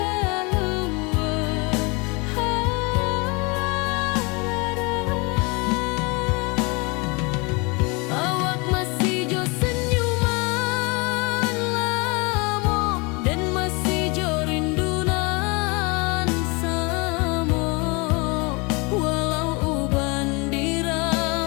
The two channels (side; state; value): right; quieter; 28.7 dB